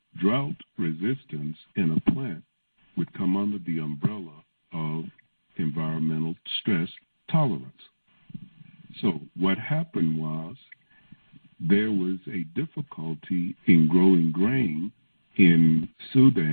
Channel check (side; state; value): both; inverted; correlation -1.00